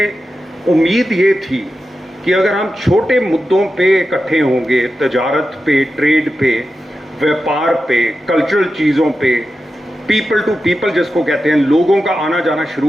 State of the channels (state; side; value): normal; both; correlation 0.91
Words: उम्मीद ये थी कि अगर हम छोटे मुद्दों पे इकट्ठे होंगे, तजारत पे, ट्रेड पे, व्यापार पे, कल्चरल चीज़ों पे, पीपल टू पीपल जिसको कहते हैं, लोगों का आना जाना